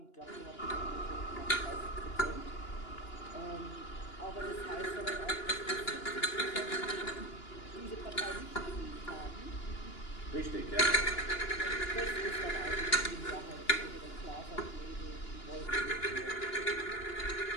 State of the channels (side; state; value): right; late; 2.9 ms